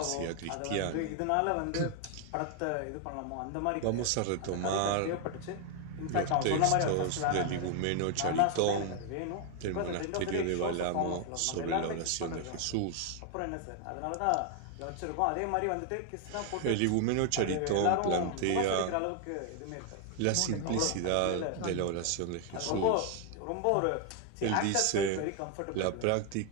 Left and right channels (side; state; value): both; different; correlation 0.00